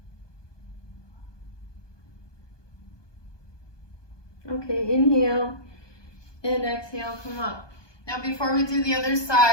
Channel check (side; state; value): right; late; 1.2 ms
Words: Okay, inhale and exhale, come up. Now before we do the other